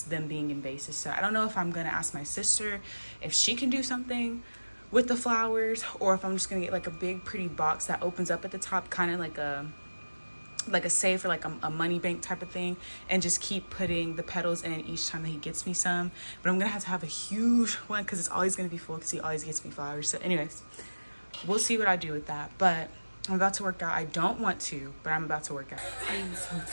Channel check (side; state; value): both; inverted; correlation -1.00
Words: them being in vases. So I don't know if I'm gonna ask my sister if she can do something with the flowers, or if I'm just gonna get like a big pretty box that opens up at the top, kind of like a safe or like a money bank type of thing, and just keep putting the petals in each time that he gets me some. But I'm gonna have a huge one because it's always gonna be full because he always gets me flowers. So anyways, we'll see what I do with that. But I'm about to work out. I don't want to, but I'm about to work out. I'm so